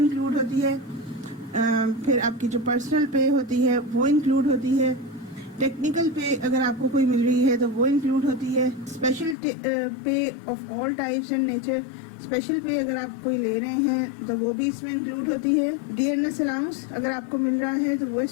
होती है, फिर आपकी जो पर्सनल पे होती है वो इंक्लूड होती है, टेक्निकल पे अगर आपको कोई मिल रही है तो वो इंक्लूड होती है, स्पेशल पे of all types and nature, special पे अगर आप कोई ले रहे हैं तो वो भी इसमें इंक्लूड होती है, डियरनेस अलाउंस अगर आपको मिल रहा है तो वो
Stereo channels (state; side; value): drops out; right; at 9.3 s